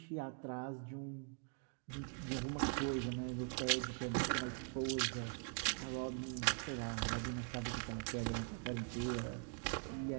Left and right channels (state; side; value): quieter; left; 35.9 dB